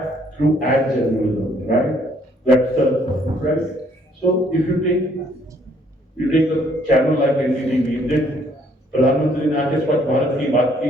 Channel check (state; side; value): normal; both; correlation 0.65